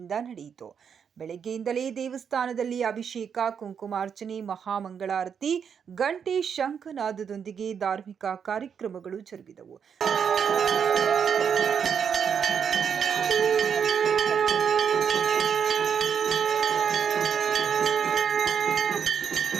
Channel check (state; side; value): quieter; left; 7.2 dB